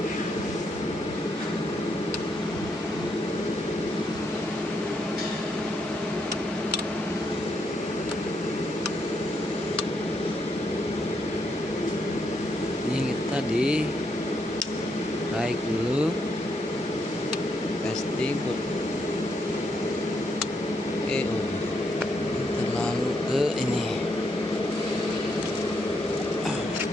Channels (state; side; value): normal; both; correlation 0.77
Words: Ini kita di raik dulu, testing put. Oke, terlalu ke ini